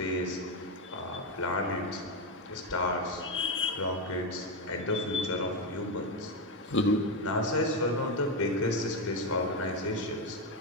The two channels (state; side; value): normal; both; correlation 0.09